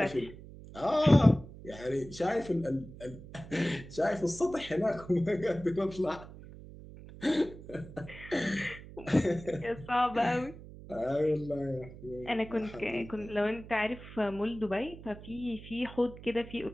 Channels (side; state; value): right; noise; hum, 16 dB below the sound